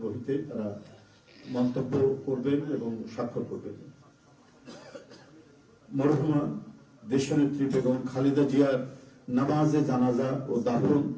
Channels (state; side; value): identical; both; correlation 1.00